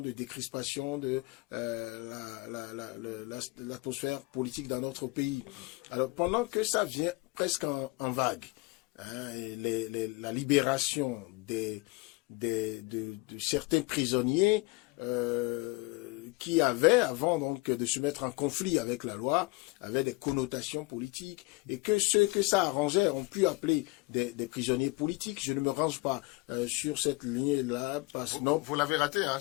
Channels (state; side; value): quieter; right; 24.4 dB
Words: de décrispation de l'atmosphère politique dans notre pays. Alors, pendant que ça vient presque en vague, la libération de certains prisonniers qui avaient, avant donc de se mettre en conflit avec la loi, avaient des connotations politiques, et que ceux que ça arrangeait ont pu appeler des prisonniers politiques. Je ne me range pas sur cette ligne-là, parce que non. Vous l'avez raté, hein,